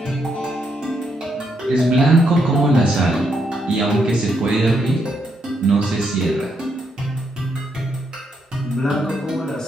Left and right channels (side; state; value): both; normal; correlation 0.77